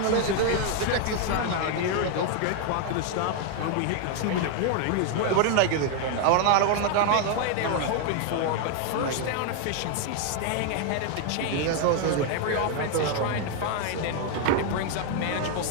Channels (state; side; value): different; both; correlation 0.00